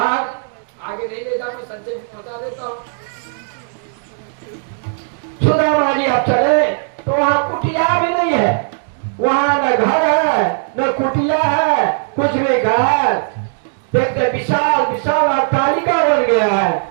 आगे नहीं ले जाऊंगा, संजय बता देता हूँ। सुदामा जी अब चले तो वहां कुटिया भी नहीं है, वहां न घर है न कुटिया है, कुछ भी घर। देखते विशाल विशाल अट्टालिका बन गया है।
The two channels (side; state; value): left; silent; digital silence